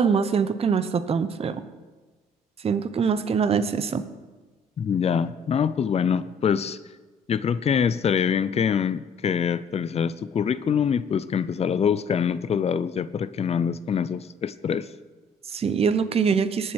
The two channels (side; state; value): both; normal; correlation 0.58